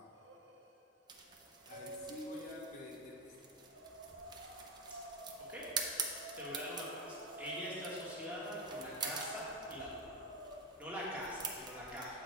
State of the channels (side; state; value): both; normal; correlation 0.14